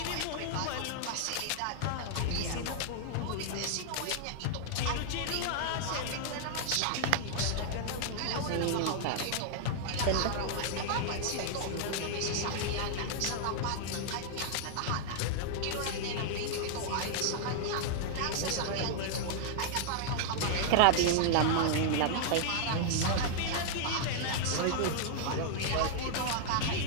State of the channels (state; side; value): different; both; correlation -0.01